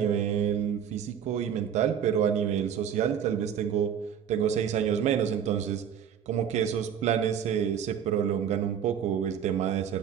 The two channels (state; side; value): quieter; left; 8.5 dB